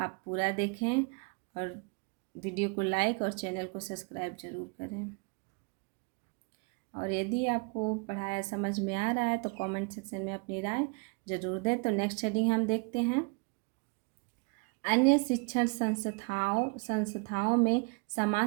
पूरा देखें और वीडियो को लाइक और चैनल को सब्सक्राइब जरूर करें। और यदि आपको पढ़ाया समझ में आ रहा है तो कमेंट सेक्शन में अपनी राय जरूर दें। तो नेक्स्ट हेडिंग हम देखते हैं अन्य शिक्षण संस्थाओं में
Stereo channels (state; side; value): quieter; left; 34.2 dB